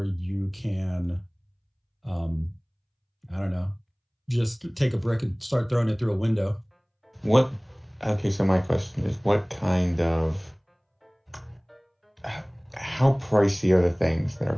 you can, I don't know, just take a brick and start throwing it through a window. What? Okay, so my question is, what kind of, how pricey are the things that are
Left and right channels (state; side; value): identical; both; correlation 1.00